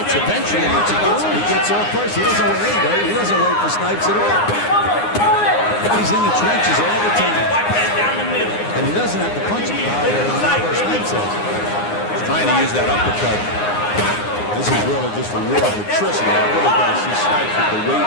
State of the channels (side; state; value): right; late; 9.7 ms